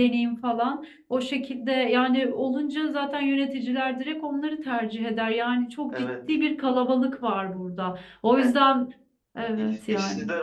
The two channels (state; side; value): identical; both; correlation 1.00